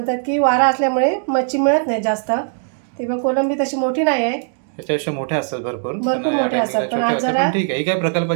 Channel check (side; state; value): left; silent; 66 dB below the other